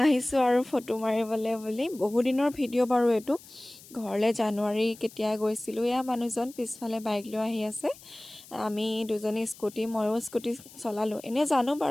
আহিছোঁ আৰু ফটো মাৰিবলৈ বুলি। বহুদিনৰ ভিডিঅ' বাৰু এইটো। ঘৰলৈ জানুৱাৰী কেতিয়া গৈছিলোঁ। এয়া মানুহজন পিছফালে বাইক লৈ আহি আছে, আমি দুজনী স্কুটি, ময়ো স্কুটি চলালোঁ। এনেই জানো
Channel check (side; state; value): left; noise; hiss, 20 dB below the sound